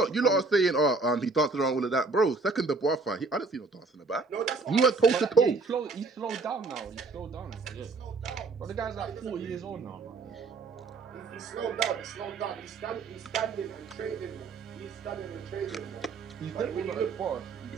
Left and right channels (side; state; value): left; quieter; 3.9 dB